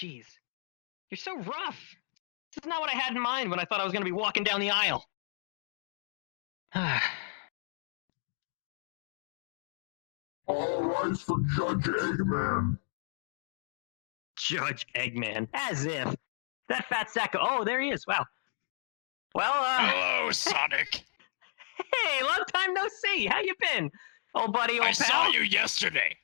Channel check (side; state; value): right; silent; digital silence